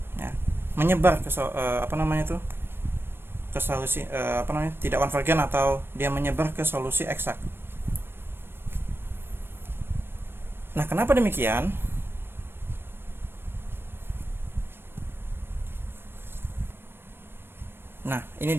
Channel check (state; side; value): late; left; 0.11 ms